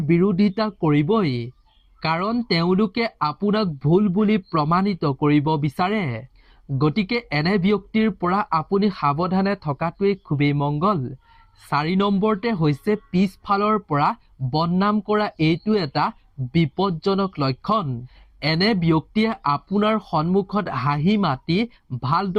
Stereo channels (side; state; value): both; identical; correlation 1.00